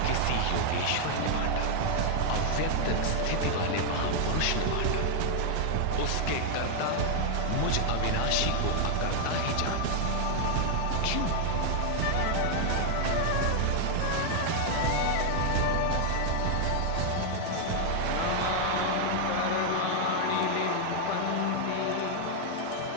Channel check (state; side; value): different; both; correlation 0.00